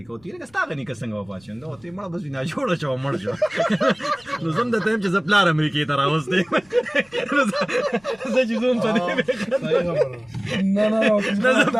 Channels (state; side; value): noise; left; rumble, 30 dB below the sound